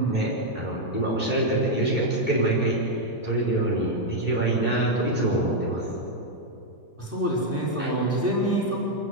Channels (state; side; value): normal; both; correlation 0.00